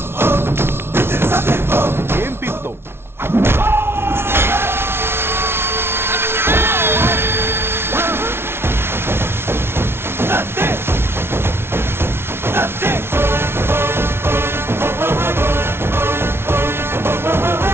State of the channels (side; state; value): left; late; 0.12 ms